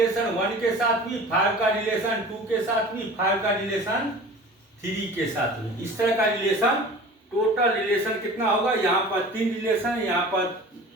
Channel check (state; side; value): normal; both; correlation 0.40